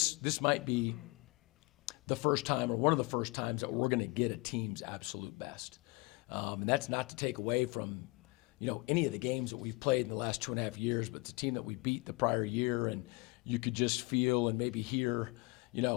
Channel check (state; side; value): quieter; right; 25.5 dB